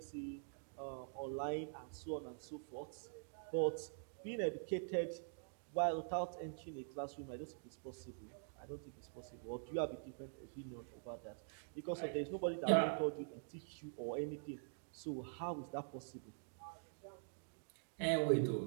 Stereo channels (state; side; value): silent; left; digital silence